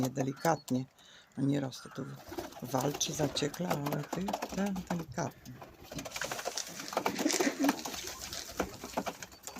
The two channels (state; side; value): identical; both; correlation 1.00